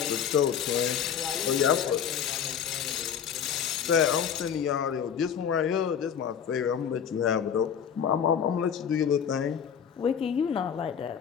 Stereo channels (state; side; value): quieter; right; 8.0 dB